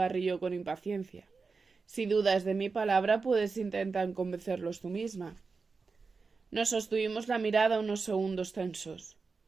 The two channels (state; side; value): quieter; left; 4.5 dB